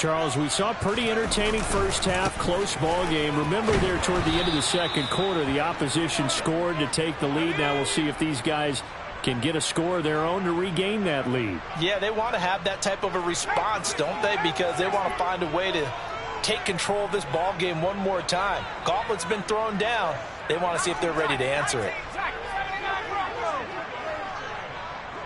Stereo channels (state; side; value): identical; both; correlation 1.00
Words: we saw a pretty entertaining first half, close ball game. Remember there toward the end of the second quarter, the opposition scored to take the lead. Now we'll see if these guys can get a score of their own to regain that lead. Yeah, they want to have that type of a response, don't they? Because they want to find a way to take control of this ball game one more time. Gauntlet's been thrown down. They want to see if they're ready to answer it.